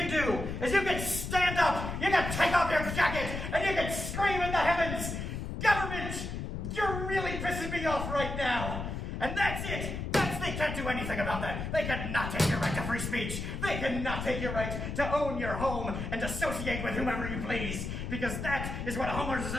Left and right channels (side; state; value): left; noise; rumble, 5 dB below the sound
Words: do is you can stand up, you can take off your jacket, and you can scream in the heavens, "Government, you're really pissing me off right now!" And that's it! They can't do anything about that. They cannot take your right to free speech. They cannot take your right to own your home and associate with whomever you please. Because that is what a homeowners